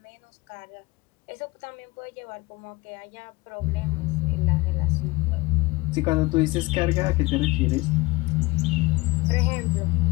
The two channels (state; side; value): quieter; right; 22.2 dB